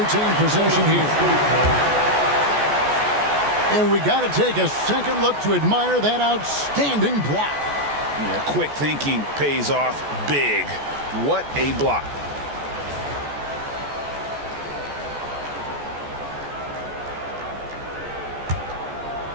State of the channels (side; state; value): left; late; 14 ms